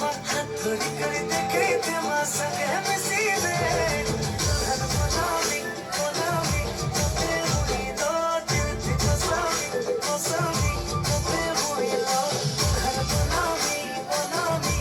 হাত ধরি করে দেখে তেমা সঙ্গে মিশি দে দুल्हन बनावी बनावी তোতে মুইলো দিল থি কোসামি কোসামি তোতে মুইলো দুल्हन बनावी बनावी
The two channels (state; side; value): identical; both; correlation 1.00